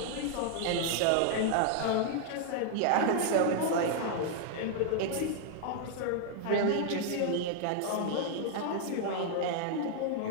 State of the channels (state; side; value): different; both; correlation 0.00